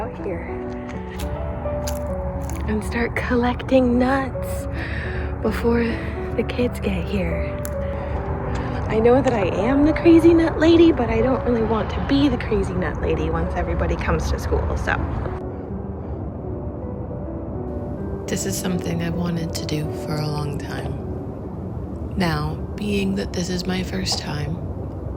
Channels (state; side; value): identical; both; correlation 1.00